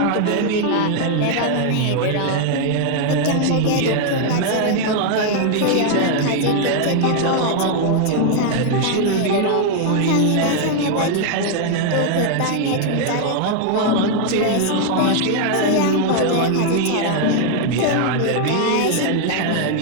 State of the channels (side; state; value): both; different; correlation 0.00